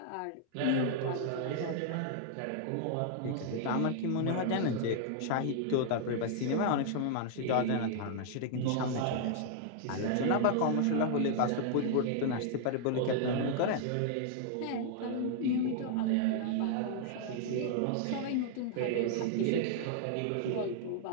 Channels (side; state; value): both; different; correlation -0.01